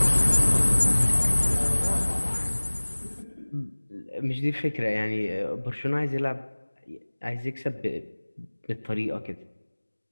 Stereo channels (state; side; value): inverted; both; correlation -1.00